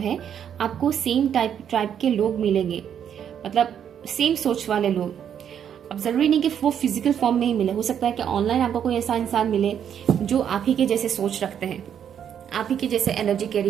आपको सेम टाइप के लोग मिलेंगे, मतलब सेम सोच वाले लोग। अब जरूरी नहीं कि वो फिजिकल फॉर्म में ही मिले, हो सकता है कि ऑनलाइन आपको कोई ऐसा इंसान मिले जो आप ही के जैसे सोच रखते हैं, आप ही के जैसे एनर्जी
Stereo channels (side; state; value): left; quieter; 8.9 dB